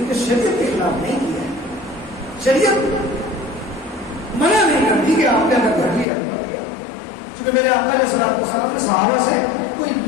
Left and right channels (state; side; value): drops out; right; at 6.1 s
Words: نے شریعت کے خلاف نہیں کیا ہے. شریعت منع نہیں کرتی کہ آپ نے اگر گھر لیا کیونکہ میرے آقا علیہ السلام نے صحابہ سے کوئی